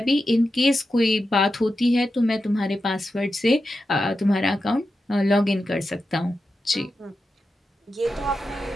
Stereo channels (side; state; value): both; normal; correlation 0.90